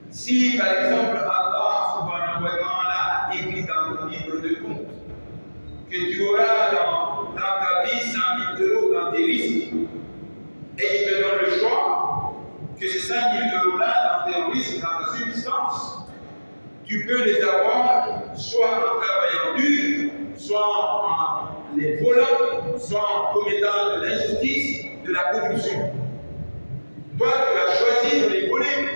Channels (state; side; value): inverted; both; correlation -1.00